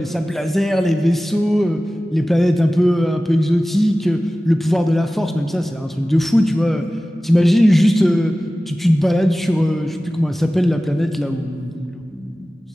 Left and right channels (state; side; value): normal; both; correlation 0.97